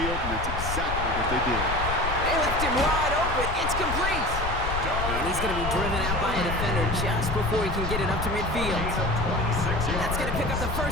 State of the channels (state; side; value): noise; left; rumble, 4 dB below the sound